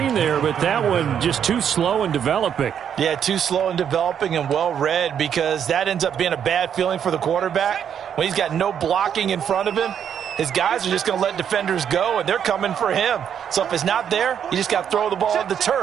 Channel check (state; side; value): quieter; left; 8.6 dB